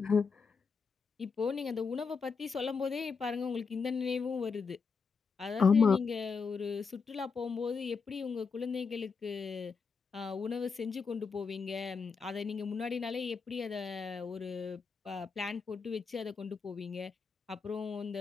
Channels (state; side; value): quieter; right; 5.2 dB